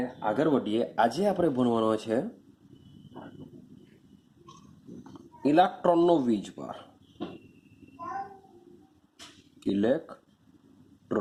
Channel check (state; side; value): identical; both; correlation 1.00